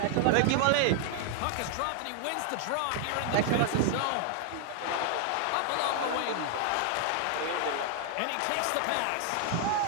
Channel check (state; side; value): different; both; correlation 0.00